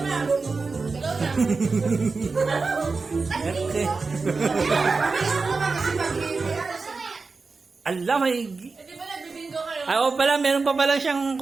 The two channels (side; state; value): left; quieter; 4.2 dB